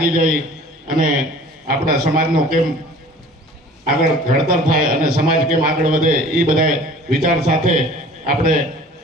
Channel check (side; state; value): both; normal; correlation 0.47